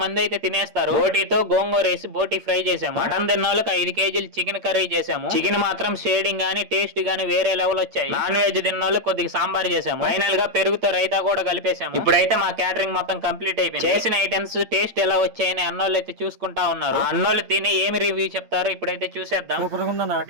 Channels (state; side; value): late; left; 8.8 ms